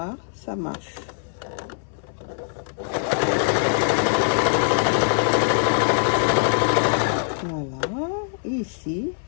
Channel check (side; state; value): right; silent; 60 dB below the other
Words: ça marche. Voilà, et ici,